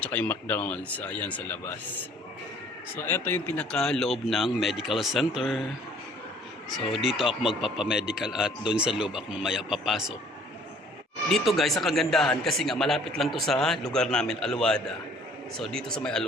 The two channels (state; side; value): normal; both; correlation 0.56